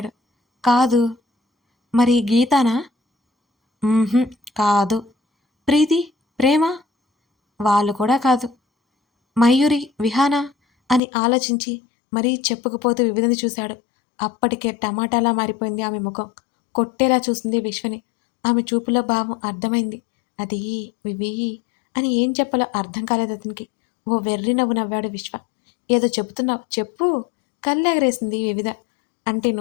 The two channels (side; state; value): right; drops out; at 11.0 s